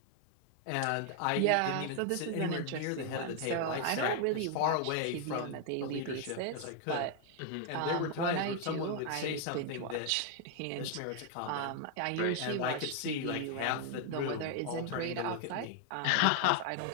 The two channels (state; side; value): different; both; correlation 0.00